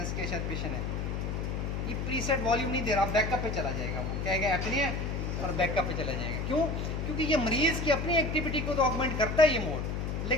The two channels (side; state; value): left; noise; hum, 2 dB below the sound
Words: किया शायद पेशेंट है। ये प्रीसेट वॉल्यूम नहीं दे रहा, बैकअप पे चला जाएगा। वो कहेगा एपनिया और बैकअप पे चला जाएगा। क्यों? क्योंकि ये मरीज़ की अपनी एक्टिविटी को तो ऑगमेंट करता है ये मोड,